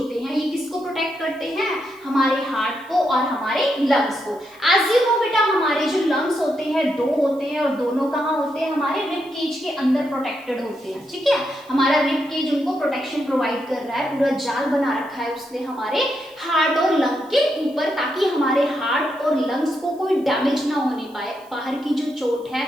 हैं ये किसको प्रोटेक्ट करते हैं, हमारे हार्ट को और हमारे लंग्स को। एज यू नो बेटा, हमारे जो लंग्स होते हैं दो होते हैं और दोनों कहाँ होते हैं, हमारे रिब केज के अंदर प्रोटेक्टेड होते हैं। ठीक है, हमारा रिब केज उनको प्रोटेक्शन प्रोवाइड कर रहा है, पूरा जाल बना रखा है उसने हमारे हार्ट और लंग के ऊपर, ताकि हमारे हार्ट और लंग्स को कोई डैमेज ना होने पाए, बाहर की जो चोट है,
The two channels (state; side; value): noise; right; hiss, 28 dB below the sound